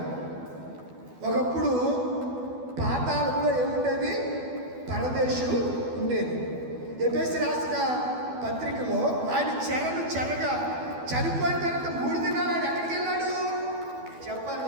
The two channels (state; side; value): late; left; 12 ms